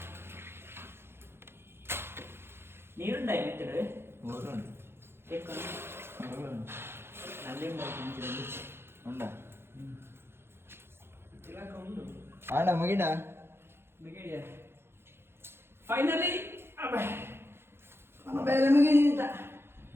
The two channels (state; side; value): late; left; 0.11 ms